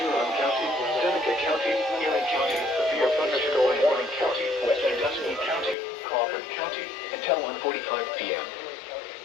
Huron County, Seneca County, Erie County, severe thunderstorm warning county, Western Dusky County, Crawford County, until 1:45 p.m.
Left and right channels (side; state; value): right; drops out; at 5.8 s